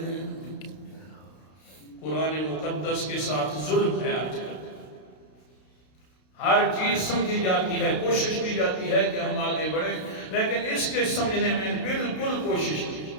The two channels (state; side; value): late; right; 32 ms